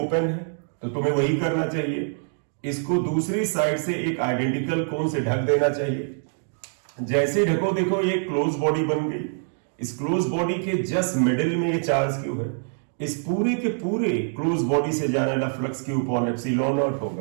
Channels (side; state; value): left; silent; 62 dB below the other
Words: है, तो तुम्हें वही करना चाहिए। इसको दूसरी साइड से एक आइडेंटिकल कोन से ढक देना चाहिए। जैसे ढको, देखो ये क्लोज बॉडी बन गई। इस क्लोज बॉडी के जस्ट मिडिल में ये चार्ज क्यू है। इस पूरे के पूरे क्लोज बॉडी से जाने वाला flux Q upon epsilon naught